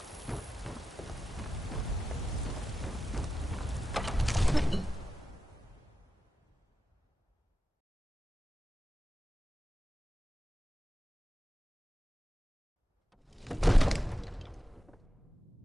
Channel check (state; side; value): normal; both; correlation 0.92